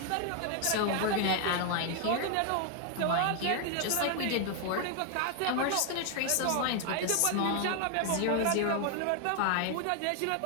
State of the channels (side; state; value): both; different; correlation 0.00